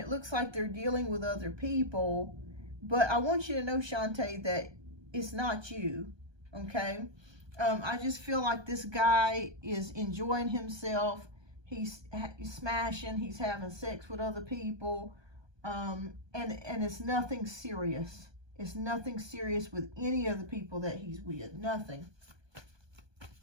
looks like they're dealing with other people. But I want you to know, Shantae, that it's not you. Okay? I just feel like this guy is enjoying himself. He's smashing. He's having sex with other people. And it's nothing serious. It's nothing serious with any of the people that he's with. Nothing.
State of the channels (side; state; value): left; late; 1.2 ms